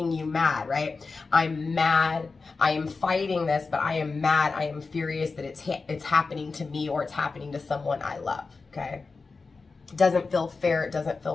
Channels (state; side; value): quieter; right; 4.2 dB